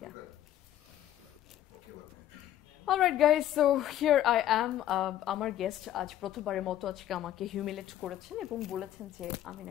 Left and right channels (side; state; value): right; quieter; 12.2 dB